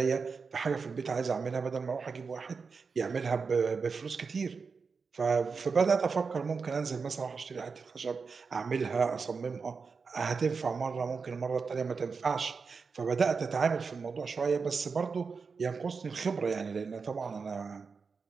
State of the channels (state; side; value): quieter; left; 5.1 dB